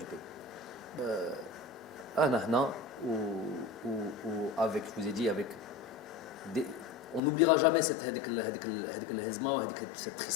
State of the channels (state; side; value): drops out; right; at 7.2 s